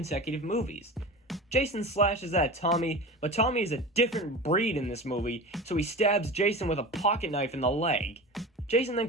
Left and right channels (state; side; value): normal; both; correlation 0.32